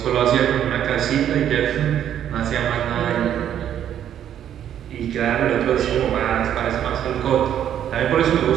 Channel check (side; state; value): left; quieter; 10.1 dB